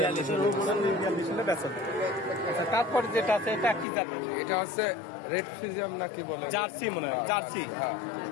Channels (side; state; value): right; drops out; at 3.9 s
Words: আচ্ছা, তারপরে যেটা আছে এটা কি জাতের? এটা হচ্ছে রেড ফিজিয়াম নাকি বলে, জার্সি মনে হয়, জার্সি।